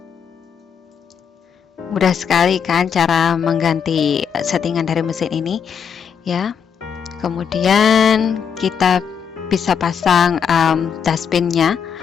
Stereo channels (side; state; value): right; quieter; 7.3 dB